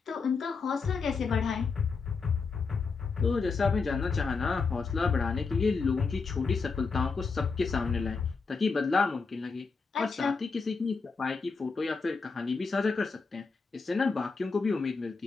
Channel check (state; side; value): quieter; right; 4.7 dB